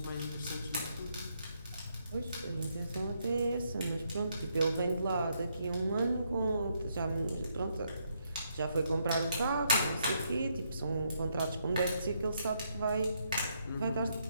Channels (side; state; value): both; inverted; correlation -0.76